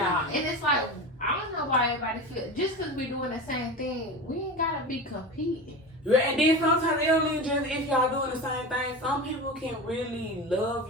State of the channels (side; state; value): both; normal; correlation 0.28